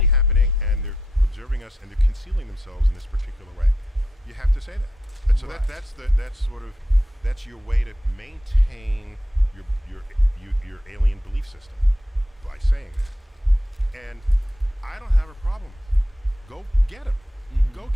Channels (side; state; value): both; normal; correlation 0.83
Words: happening and they're observing us and they're concealing themselves in this particular way. You have to say that. And so Right. that's your way to maintain your alien belief system by saying that. And I don't have a problem with it. Go get them. Mhm. Go